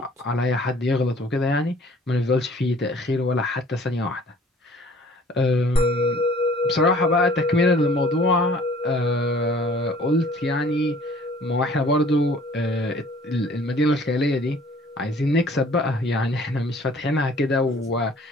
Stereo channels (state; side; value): normal; both; correlation 0.53